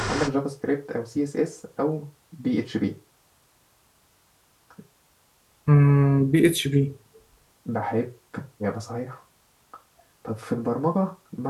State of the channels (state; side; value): identical; both; correlation 1.00